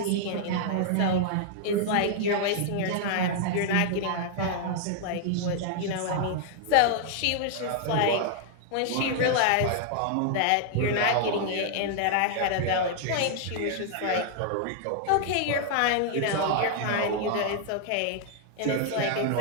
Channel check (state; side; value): different; both; correlation 0.00